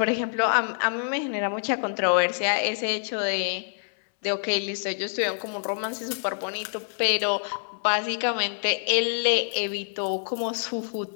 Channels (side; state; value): right; silent; 61 dB below the other